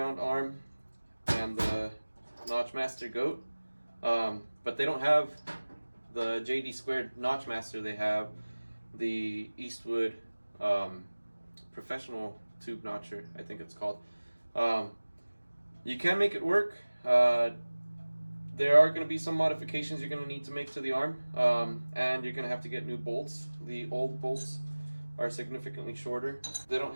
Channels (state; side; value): inverted; both; correlation -1.00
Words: arm and the Notch Master goat, but they don't have the JD2 Notch Master. They have the Eastwood professional tube notcher, I think it's called. You can make it work. There are going to be some modifications you're going to need to make to the arm, and you're going to have to get new bolts. The old bolts are significantly shorter. They don't